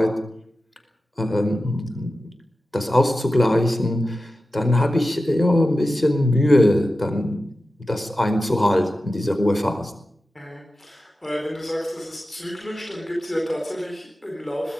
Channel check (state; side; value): normal; both; correlation 0.93